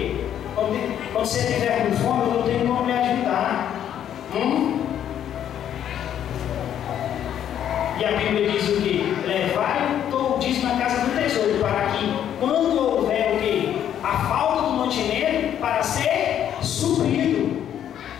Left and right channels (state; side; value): quieter; right; 10.1 dB